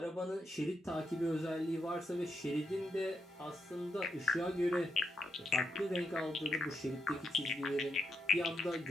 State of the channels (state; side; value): normal; both; correlation 0.82